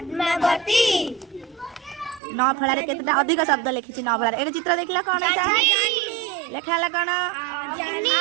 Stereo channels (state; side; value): drops out; left; at 2.2 s